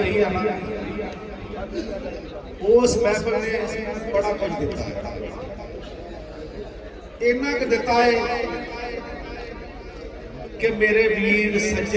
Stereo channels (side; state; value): both; identical; correlation 1.00